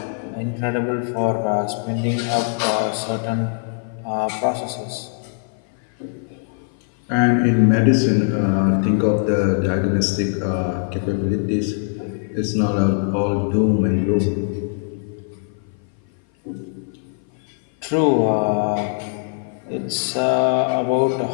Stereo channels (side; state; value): right; silent; 57 dB below the other